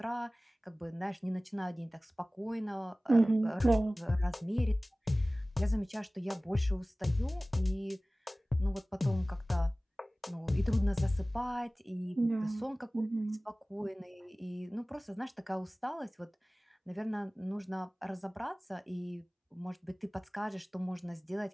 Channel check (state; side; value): normal; both; correlation 0.98